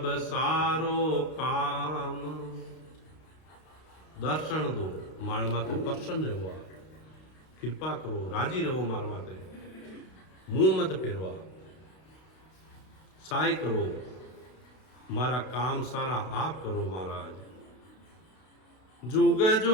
सारो काम। दर्शन दो मार माते प्रसन्न रहो, कृपा करो, राजी रहो मार माते, मुंह मत फेरवा। सहाय करो, मारा काम सारा आप करो महाराज। जुग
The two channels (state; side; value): late; right; 32 ms